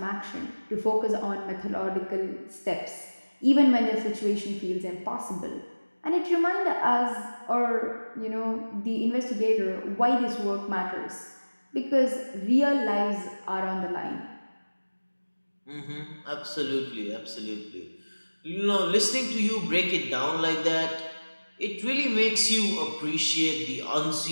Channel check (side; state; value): both; inverted; correlation -1.00